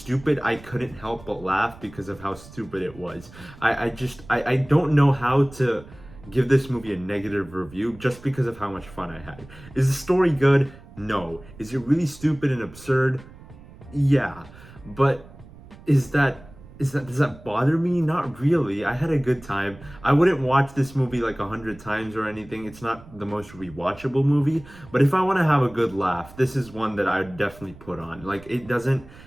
I couldn't help but laugh because of how stupid it was. I don't know how to give this movie a negative review just because of how much fun I had. Is the story good? No. Is it really stupid and absurd? Yeah. But does that bother me? Not really. I had a good time. I wouldn't watch this movie like 100 times or anything. It's not the most rewatchable movie, but if I want to have a good laugh, this is one that I would definitely put on. Like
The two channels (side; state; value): right; noise; rumble, 20 dB below the sound